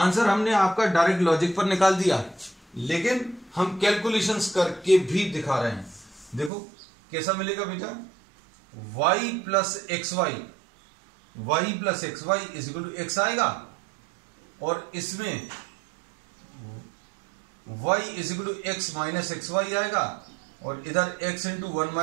हमने आपका डायरेक्ट लॉजिक पर निकाल दिया, लेकिन हम कैलकुलेशंस करके भी दिखा रहे हैं। देखो कैसा मिलेगा बेटा, y + xy = x आएगा, और इसमें y = x - xy आएगा, और इधर x ×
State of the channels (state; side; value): drops out; left; at 6.5 s